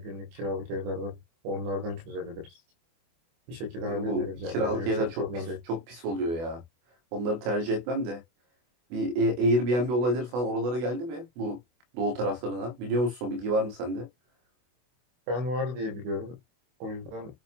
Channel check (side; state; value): left; late; 24 ms